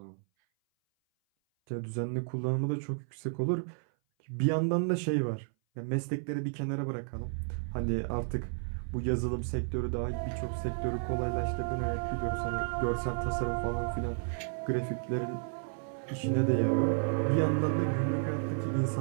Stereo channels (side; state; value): left; silent; 56 dB below the other